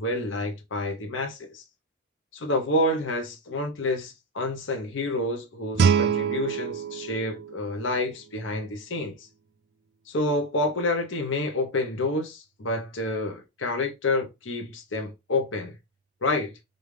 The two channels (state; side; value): normal; both; correlation 0.07